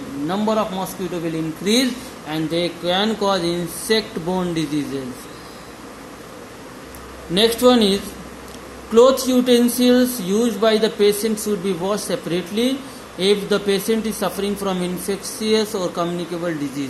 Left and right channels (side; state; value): both; identical; correlation 1.00